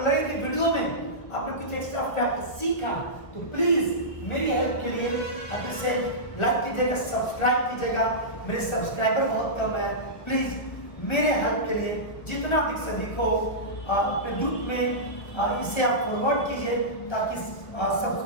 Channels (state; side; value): late; right; 1.5 ms